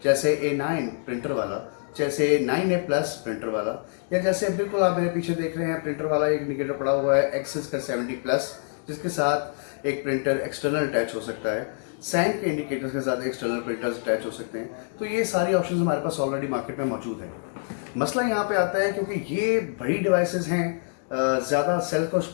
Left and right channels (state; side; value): silent; right; 61 dB below the other